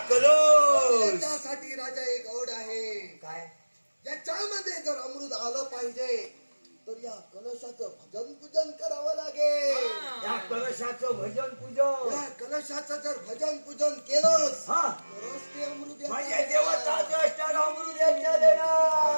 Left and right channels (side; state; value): both; inverted; correlation -1.00